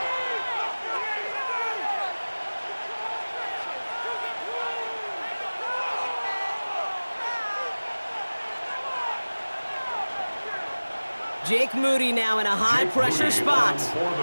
Jake Moody now in a high-pressure spot.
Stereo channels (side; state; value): both; inverted; correlation -1.00